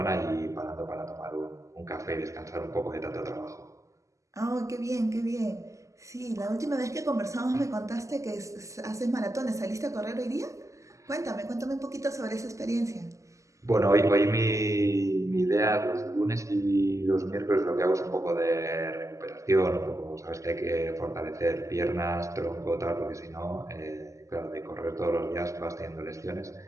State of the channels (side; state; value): left; late; 0.16 ms